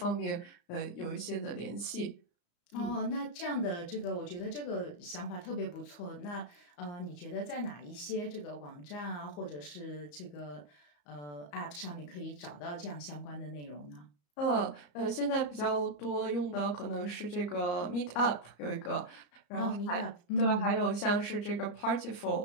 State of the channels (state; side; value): late; right; 34 ms